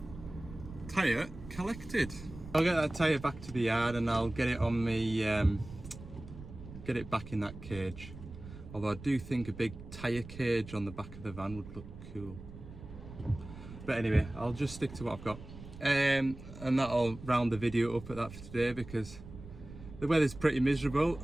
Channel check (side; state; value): right; noise; rumble, 14 dB below the sound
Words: Tyre collected. I'll get that tyre back to the yard and I'll get it on me, get it back in that cage. Although I do think a big tyre cage on the back of the van would look cool. But anyway, I'll just stick to what I've got. And that'll round the video up at that for today, because the weather's pretty miserable.